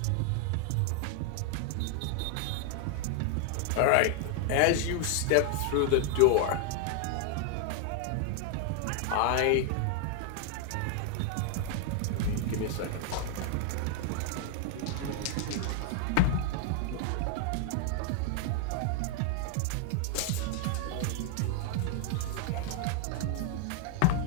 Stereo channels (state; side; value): different; both; correlation 0.00